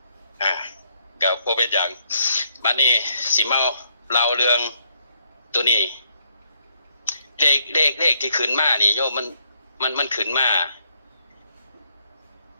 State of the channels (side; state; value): both; inverted; correlation -0.71